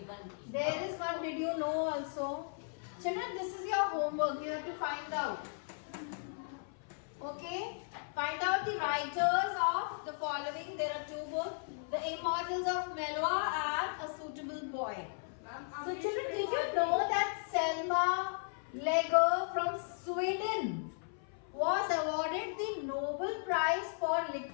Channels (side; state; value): right; silent; 54 dB below the other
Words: There is one, did you know also? Children, this is your homework. You have to find out. Okay? Find out the writers of the following. There are 2 books. The Immortals of Melwa and A Suitable Boy. So children, did you know that Selma Lager from Sweden was awarded the Nobel Prize for